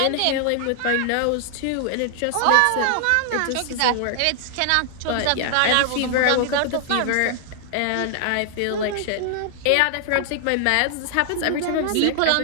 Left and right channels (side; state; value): both; different; correlation 0.00